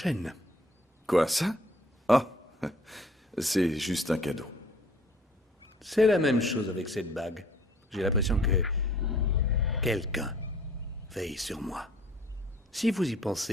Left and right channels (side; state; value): both; normal; correlation 0.56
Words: Quoi, ça? Ah, c'est juste un cadeau. C'est la même chose avec cette bague. J'ai l'impression que quelqu'un veille sur moi. Si vous y